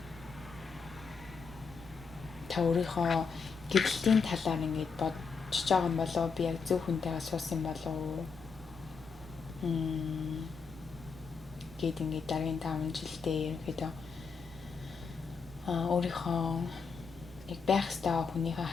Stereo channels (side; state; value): right; quieter; 5.3 dB